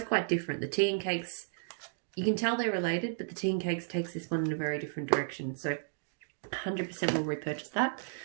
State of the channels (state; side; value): silent; left; digital silence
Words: quite different. The tea and cakes, you can tell they're related, but the tea and cakes takes this one in a very different direction. So 100% will repurchase that.